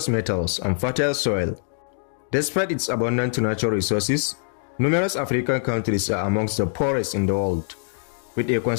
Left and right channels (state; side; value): silent; right; digital silence